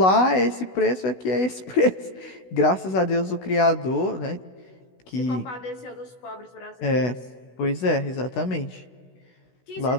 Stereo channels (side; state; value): right; late; 16 ms